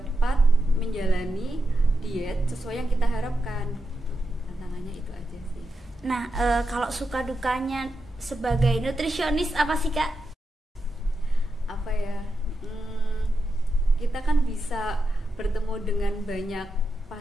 menjalani diet sesuai yang kita harapkan. Tantangannya itu aja sih. Nah kalau suka dukanya sebagai nutrisionis apa sih Kak? Apa ya, kita kan bisa bertemu dengan banyak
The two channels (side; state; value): both; normal; correlation 0.87